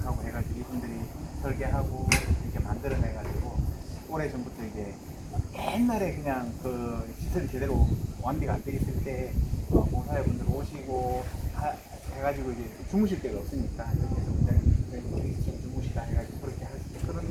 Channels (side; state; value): both; identical; correlation 1.00